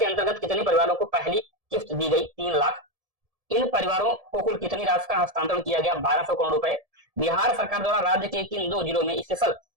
अंतर्गत कितने परिवारों को पहली किस्त दी गई? 3 लाख। इन परिवारों को कुल कितनी राशि का हस्तांतरण किया गया? 1200 करोड़ रुपए। बिहार सरकार द्वारा राज्य के किन 2 जिलों में स्पेशल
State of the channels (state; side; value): late; left; 1.7 ms